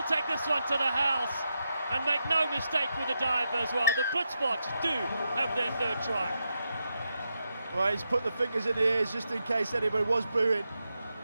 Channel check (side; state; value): both; inverted; correlation -0.85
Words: take this one to the house and make no mistake with the dive as well. The Blitzboks do have their third try. Well, he's put the fingers in the ears just in case anybody was booing.